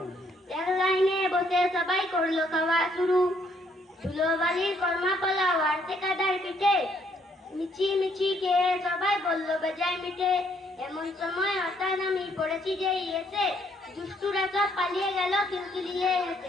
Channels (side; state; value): both; normal; correlation 0.69